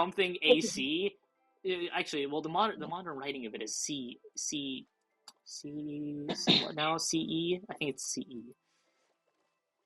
AC. Actually, well, the modern writing of it is what now? CE? I think it's CE.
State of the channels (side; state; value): both; identical; correlation 1.00